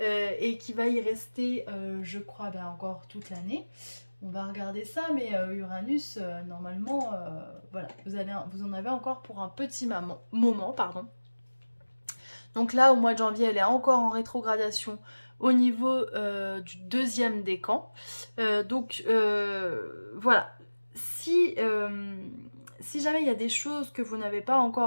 et qui va y rester, je crois, ben, encore toute l'année. On va regarder ça, mais Uranus, normalement, voilà, vous en avez encore pour un petit moment, pardon. Donc là, au mois de janvier, elle est encore en rétrogradation au niveau du deuxième décan. Voilà, si jamais il y a des choses que vous n'avez pas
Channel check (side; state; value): both; inverted; correlation -1.00